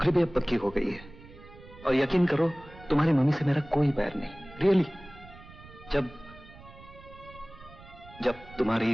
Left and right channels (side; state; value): right; noise; rumble, 20 dB below the sound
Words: भी अब पक्की हो गई है। और यकीन करो, तुम्हारी मम्मी से मेरा कोई बैर नहीं, रियली।